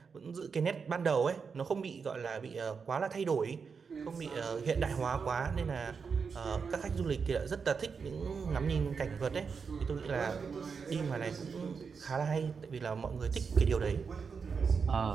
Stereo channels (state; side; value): quieter; left; 5.6 dB